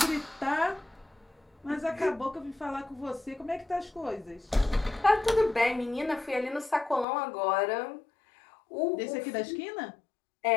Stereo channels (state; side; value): drops out; right; at 7.1 s